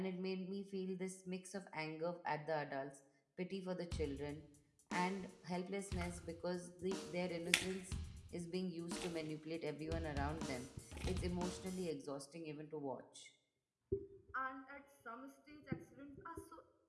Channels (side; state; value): both; identical; correlation 1.00